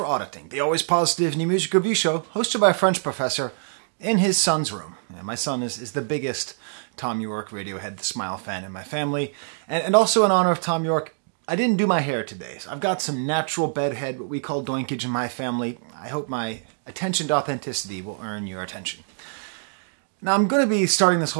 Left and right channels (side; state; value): left; silent; digital silence